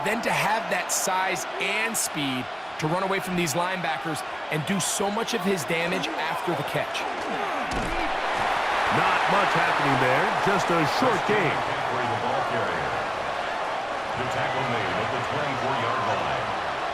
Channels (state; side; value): identical; both; correlation 1.00